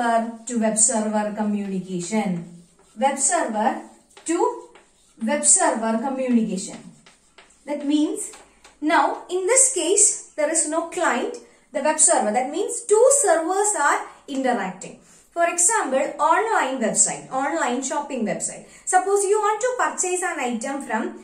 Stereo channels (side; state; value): both; identical; correlation 1.00